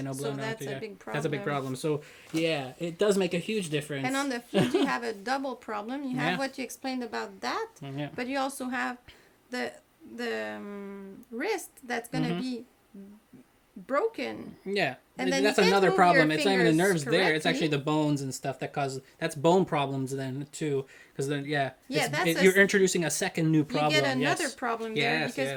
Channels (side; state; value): both; identical; correlation 1.00